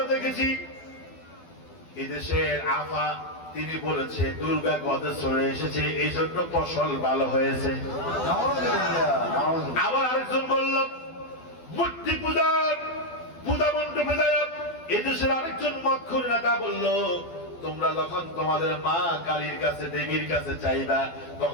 দেখেছি এদেশের আফা তিনি বলেছে দুর্গা গদে চলে এসেছে, এই জন্য ফসল ভালো হয়েছে। আবার আরেকজন বলল মূর্তি পূজার পূজা মণ্ডপে যায়। এদেশের আরেকজন মক্ষুর নেতা বলল তোমরা যখন তোমাদের মা কালীর কাছে, দেবীর কাছে চাইবা,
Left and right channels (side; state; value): right; late; 12 ms